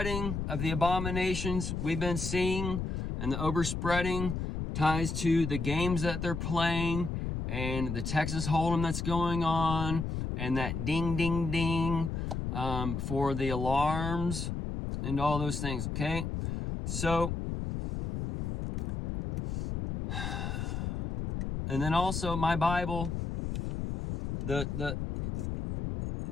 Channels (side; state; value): left; noise; rumble, 3 dB below the sound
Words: of the abominations we've been seeing, and the overspreading ties to the games that they're playing, and the Texas Hold'em that's going on, and that ding, ding, ding for the alarms and all those things, okay? So, and then also my Bible,